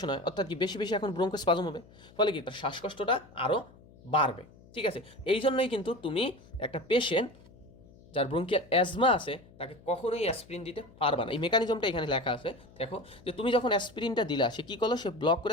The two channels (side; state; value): left; noise; hum, 24 dB below the sound